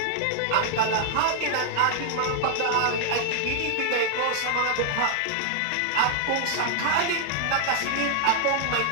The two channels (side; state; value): both; different; correlation 0.00